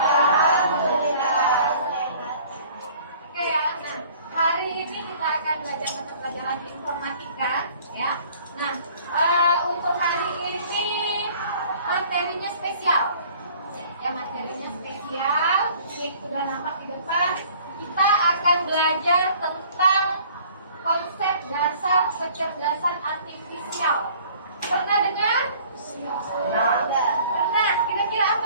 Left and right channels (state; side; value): inverted; both; correlation -0.52